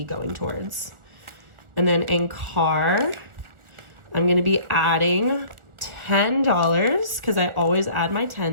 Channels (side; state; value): left; late; 1.4 ms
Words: going towards. And then in car, I'm going to be adding $10 because I always add my